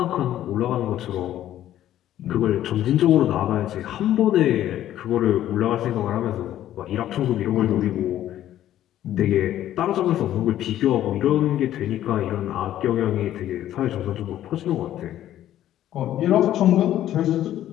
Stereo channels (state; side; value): quieter; right; 12.3 dB